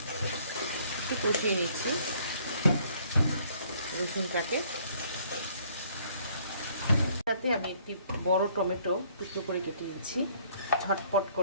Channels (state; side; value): inverted; both; correlation -0.61